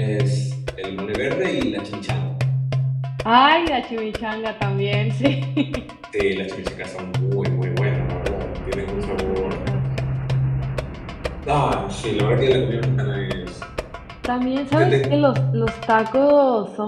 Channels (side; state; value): both; identical; correlation 1.00